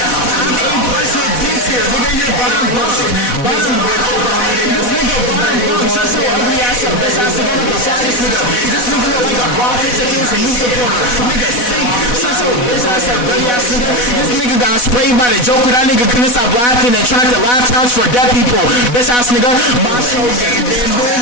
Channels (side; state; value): right; late; 4.1 ms